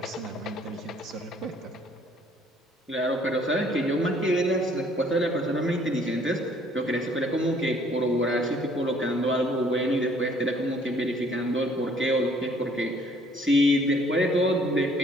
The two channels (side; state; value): both; normal; correlation 0.60